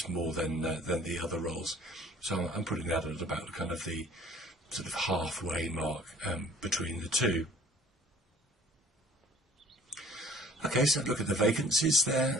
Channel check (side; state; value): both; normal; correlation 0.52